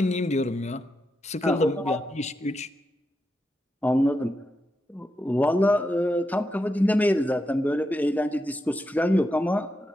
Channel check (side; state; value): both; normal; correlation 0.86